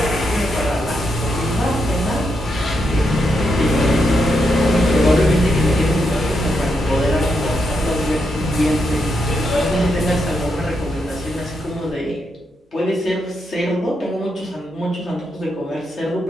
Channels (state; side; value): normal; both; correlation 0.82